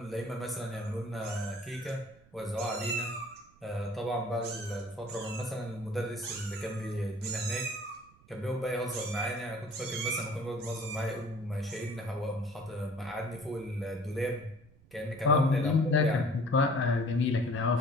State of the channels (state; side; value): noise; right; rumble, 27 dB below the sound